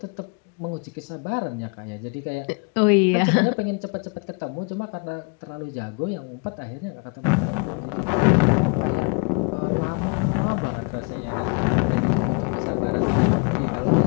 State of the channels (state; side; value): quieter; right; 34.8 dB